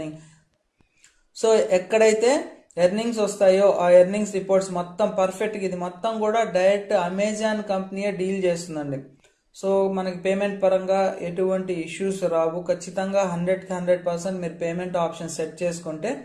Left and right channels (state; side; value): identical; both; correlation 1.00